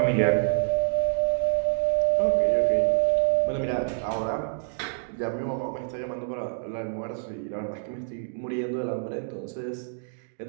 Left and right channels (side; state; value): left; silent; digital silence